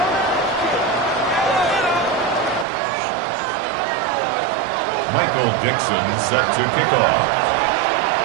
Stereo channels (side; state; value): left; drops out; at 2.7 s